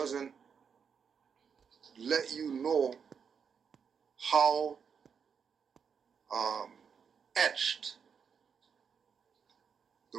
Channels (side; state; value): left; quieter; 6.6 dB